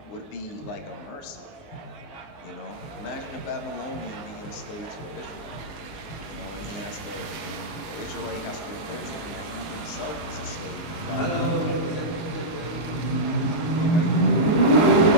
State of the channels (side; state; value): right; late; 18 ms